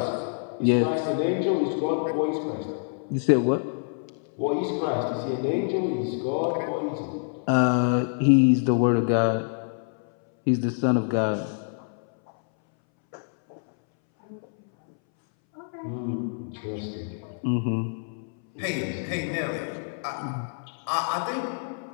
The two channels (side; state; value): right; silent; 61 dB below the other